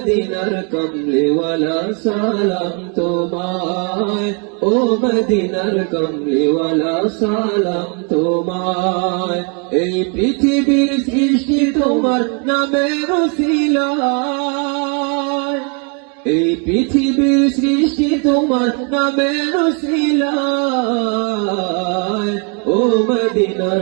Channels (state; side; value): quieter; left; 37.4 dB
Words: কমলিওয়ালা সালাম তোমায়, ও মদিনার কমলিওয়ালা সালাম তোমায়। এই পৃথিবীর সৃষ্টি তোমার নামের উসিলায়, এই পৃথিবীর সৃষ্টি তোমার নামের উসিলায়। ও